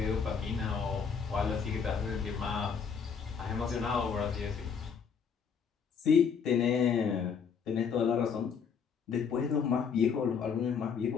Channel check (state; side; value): quieter; right; 6.4 dB